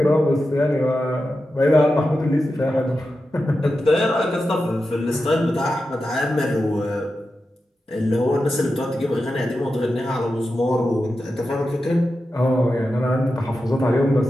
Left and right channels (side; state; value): both; normal; correlation 0.90